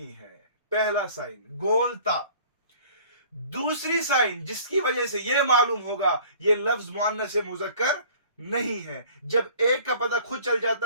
ہے۔ پہلا سائن گول تا۔ دوسری سائن جس کی وجہ سے یہ معلوم ہوگا یہ لفظ مؤنث ہے، مذکر نہیں ہے، جب ایک کا پتہ خود چل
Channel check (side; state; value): both; inverted; correlation -0.50